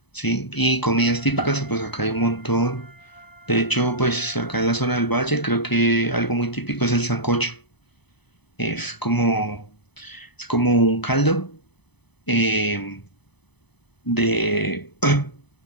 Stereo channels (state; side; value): late; right; 0.99 ms